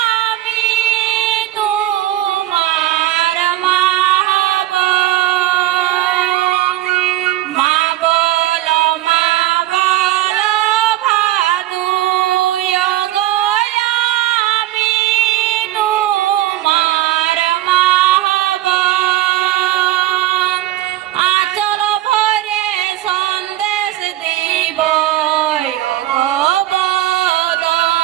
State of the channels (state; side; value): quieter; left; 14.8 dB